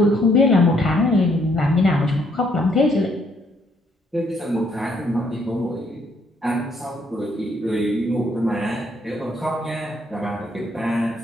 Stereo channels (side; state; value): both; normal; correlation 0.69